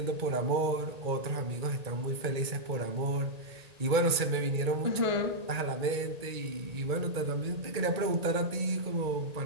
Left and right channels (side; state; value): left; late; 1.8 ms